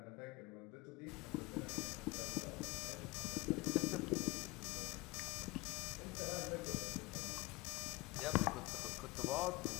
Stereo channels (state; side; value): quieter; right; 22.9 dB